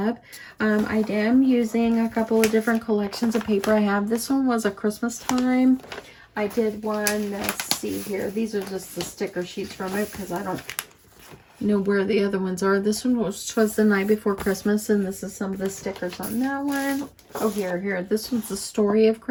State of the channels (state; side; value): identical; both; correlation 1.00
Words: I am using a couple of different collections of paper I have. This one was a Christmas time. I did one, let's see here. These are just the sticker sheets from it because I don't know where the other ones are. This one was the night before Christmas, and this is some of the stickers on that one. Oh, here. This one's the story of